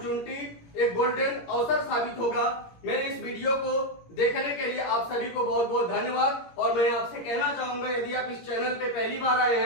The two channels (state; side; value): late; right; 17 ms